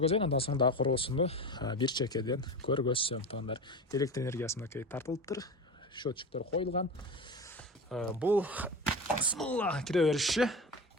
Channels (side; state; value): both; normal; correlation 0.27